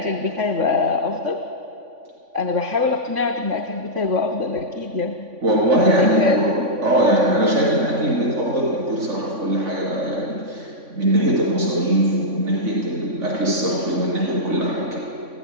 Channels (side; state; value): left; late; 3.5 ms